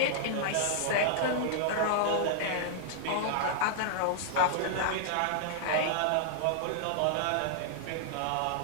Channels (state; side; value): different; both; correlation -0.01